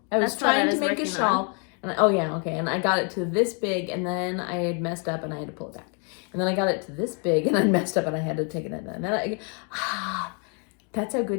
I was That's what I trying to was make a working shawl. And and I got it to this big, and then I had messed up and I had to pull it back. And then I got it to this big, and I messed up and I had to take it in. And then that's how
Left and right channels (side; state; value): right; quieter; 38.0 dB